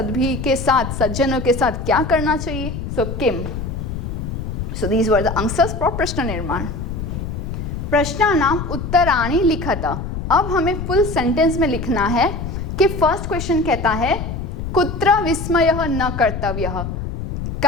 के साथ, सज्जनों के साथ क्या करना चाहिए. सो किम. So these were the answers for प्रश्न निर्माण. प्रश्नानाम उत्तराणि लिखत. अब हमें फुल सेंटेंस में लिखना है कि फर्स्ट क्वेश्चन कहता है कुत्र विस्मयः न कर्तव्यः,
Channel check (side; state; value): left; noise; rumble, 5 dB below the sound